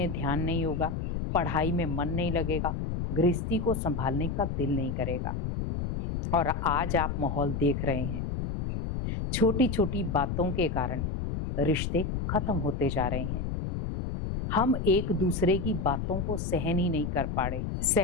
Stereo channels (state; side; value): noise; left; rumble, 3 dB below the sound